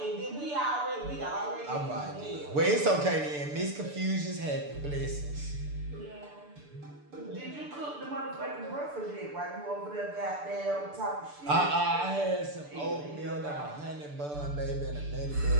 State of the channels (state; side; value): late; left; 6.8 ms